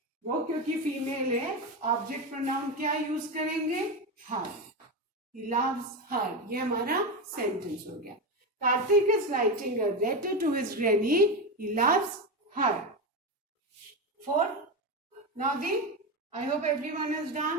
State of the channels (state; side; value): normal; both; correlation 0.15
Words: वो क्योंकि फीमेल है ऑब्जेक्ट प्रोनाउन क्या यूज करेंगे? हर. He loves her. ये हमारा सेंटेंस हो गया. Karthik is writing a letter to his granny. He loves her. 4. Now I hope everyone is